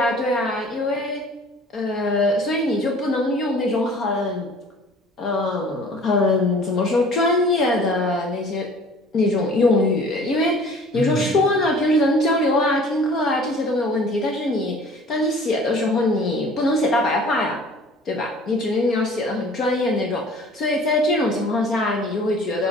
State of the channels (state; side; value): normal; both; correlation 0.48